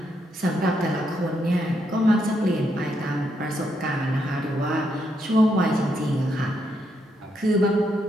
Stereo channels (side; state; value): both; normal; correlation 0.78